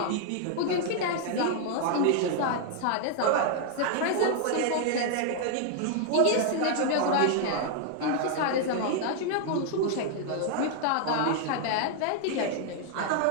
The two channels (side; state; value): both; different; correlation 0.00